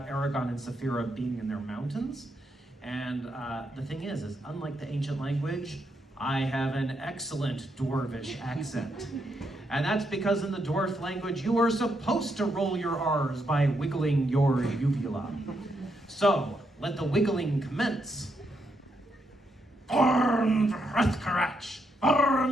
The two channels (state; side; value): normal; both; correlation 0.79